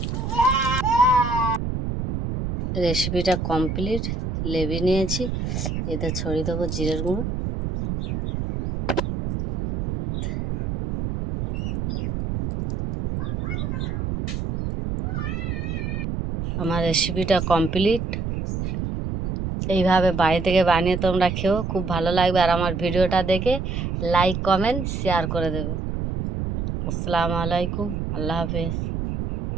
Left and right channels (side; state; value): right; noise; rumble, 3 dB below the sound